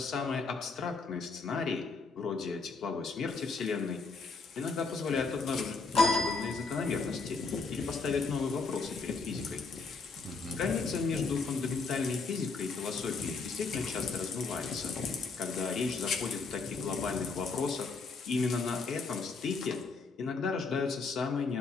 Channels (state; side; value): quieter; right; 4.4 dB